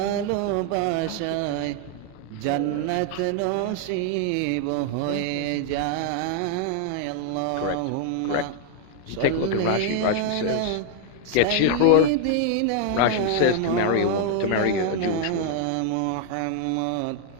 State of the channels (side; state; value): both; different; correlation 0.00